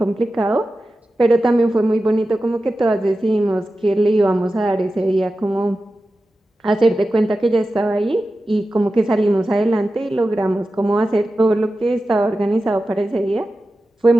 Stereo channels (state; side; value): normal; both; correlation 0.93